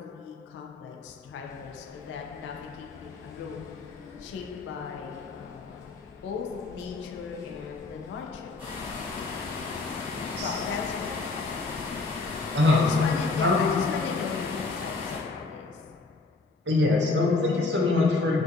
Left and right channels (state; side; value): quieter; right; 3.6 dB